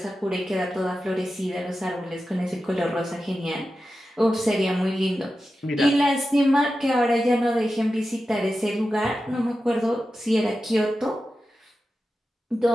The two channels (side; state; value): both; normal; correlation 0.92